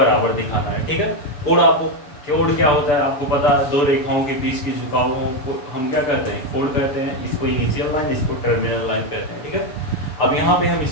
दिखाना है, ठीक है। कोण आपको, कोण क्या होता है आपको पता है, दो रेखाओं के बीच की झुकावों को हम क्या कहते हैं, कोण कहते हैं, इसको इनिशियल लाइन, इसको टर्मिनल लाइन कहते हैं, ठीक है। अब यहाँ पे हम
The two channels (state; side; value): late; right; 6.9 ms